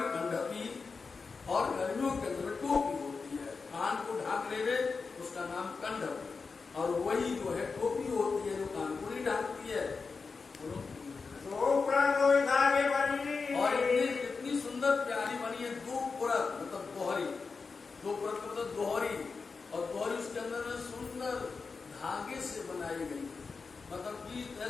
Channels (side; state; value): right; quieter; 4.7 dB